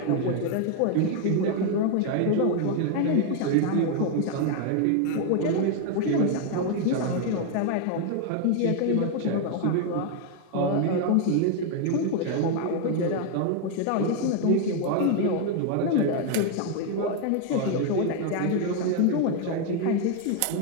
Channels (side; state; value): both; different; correlation 0.00